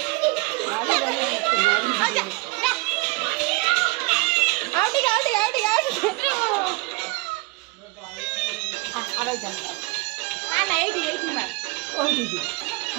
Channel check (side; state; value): left; quieter; 25.4 dB